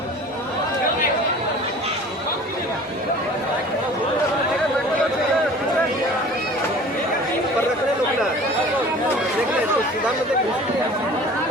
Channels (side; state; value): both; normal; correlation 0.44